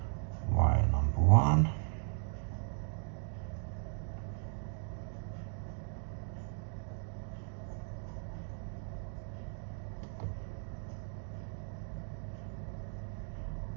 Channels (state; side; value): silent; left; 53 dB below the other